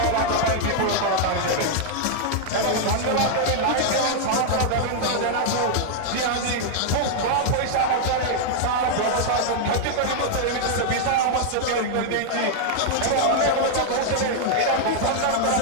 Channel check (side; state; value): both; different; correlation 0.00